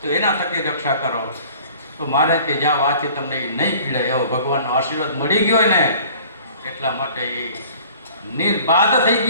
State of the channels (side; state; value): both; inverted; correlation -0.49